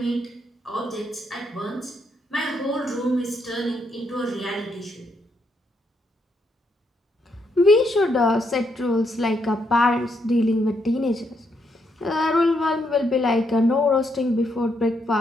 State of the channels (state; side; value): normal; both; correlation 0.77